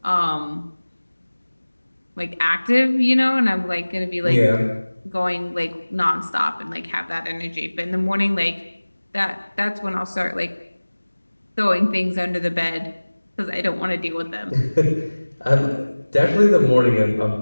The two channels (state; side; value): inverted; both; correlation -1.00